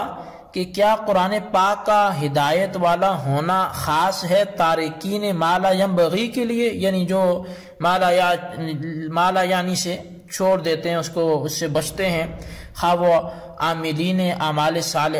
کہ کیا قرآن پاک کا ہدایت والا ہونا خاص ہے تارکین ما لا ينبغی کے لیے، یعنی جو ما لا یعنی سے چھوڑ دیتے ہیں، اس سے بچتے ہیں، خواہ وہ عاملین اعمال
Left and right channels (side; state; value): both; identical; correlation 1.00